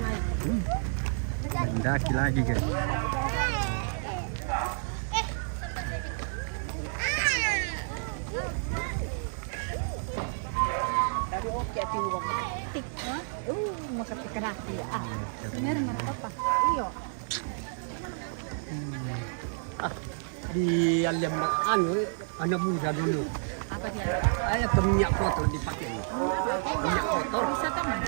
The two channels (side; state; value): left; silent; 58 dB below the other